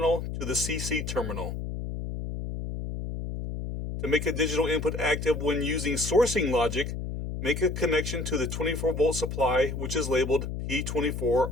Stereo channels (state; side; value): noise; left; hum, 5 dB below the sound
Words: to the CC terminal. To make a digital input active when using sourcing logic, make a connection to the 24-volt supply, which is labeled P24